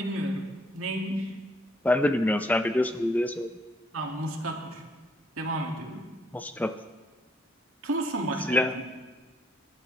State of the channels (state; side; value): normal; both; correlation 0.69